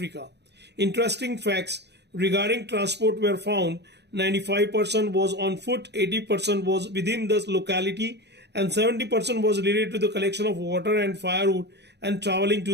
Interesting facts regarding transport were found. 95% was on foot, 80% was within the locality, and 70% was related to the collection of water and firewood and traveling to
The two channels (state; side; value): late; left; 0.49 ms